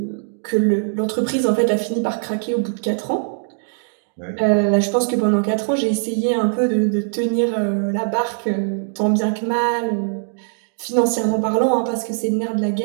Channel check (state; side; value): silent; left; digital silence